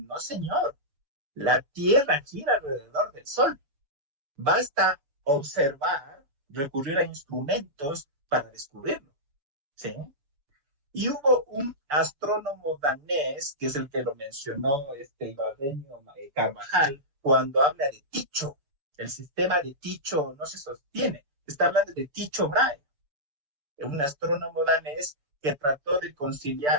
señor, la Tierra gira alrededor del Sol. Basta observar, recurrir a instrumentos para descubrirlo, ¿sí? Y hubo un astrónomo danés, que es el que lo mencionó Ibarreño Carvajal, cuando habla de Tycho. El sistema de Tycho no se sostiene. Está hablando de Tycho Brahe, un astrónomo danés que trató de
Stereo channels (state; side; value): late; left; 6.9 ms